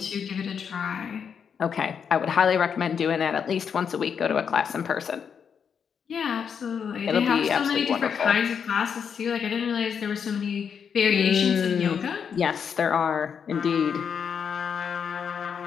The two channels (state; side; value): quieter; right; 7.1 dB